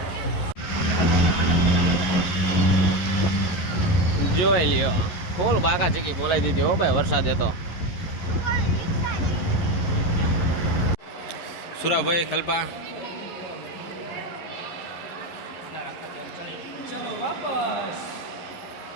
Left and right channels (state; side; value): late; right; 11 ms